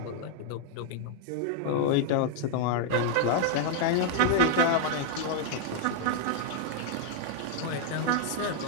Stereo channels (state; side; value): different; both; correlation -0.01